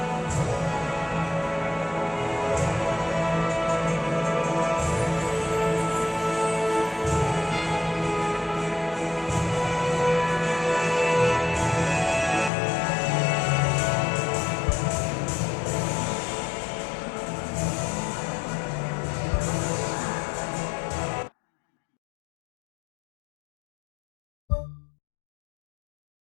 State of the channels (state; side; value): drops out; right; at 12.5 s